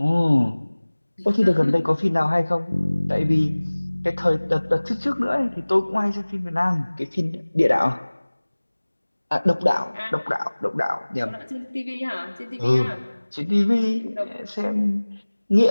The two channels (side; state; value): both; inverted; correlation -1.00